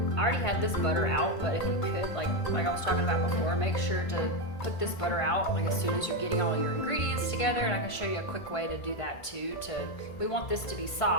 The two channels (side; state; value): right; late; 1.5 ms